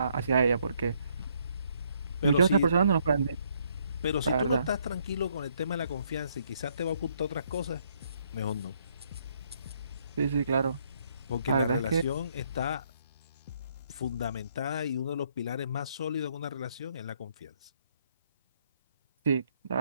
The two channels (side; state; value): both; inverted; correlation -0.70